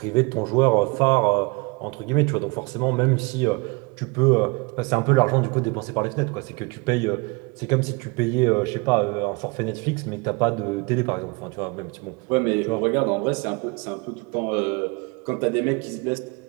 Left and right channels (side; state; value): left; quieter; 28.5 dB